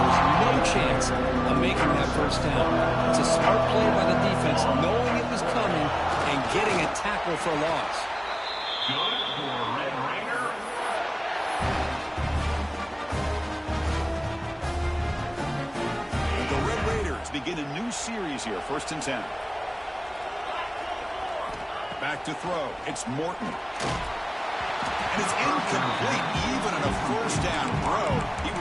no chance of making that 1st down. It's a smart play by the defense, knowing it was coming and getting a tackle for a loss. Good for Red Raider. And the Red Raiders begin a new series here, 1st and 10. Back to throw. It's Morton. And it's incomplete. Even on a 1st down throw, he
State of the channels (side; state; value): both; identical; correlation 1.00